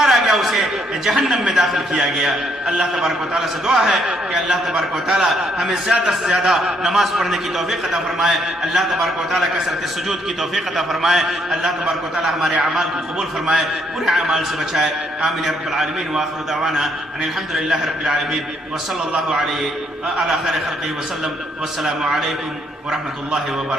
گیا، اسے جہنم میں داخل کیا گیا۔ اللہ تبارک و تعالیٰ سے دعا ہے کہ اللہ تبارک و تعالیٰ ہمیں زیادہ سے زیادہ نماز پڑھنے کی توفیق عطا فرمائے، اللہ تبارک و تعالیٰ کثرت سجود کی توفیق عطا فرمائے، اللہ تبارک و تعالیٰ ہمارے اعمال کو قبول فرمائے، برے اعمال سے بچائے۔ آمین یا رب العالمین، وآخر دعوانا ان الحمد للہ رب العالمین، وصلی اللہ علیہ علی خیر خلقہ وسلم، والسلام علیکم ورحمۃ اللہ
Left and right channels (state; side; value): normal; both; correlation 0.70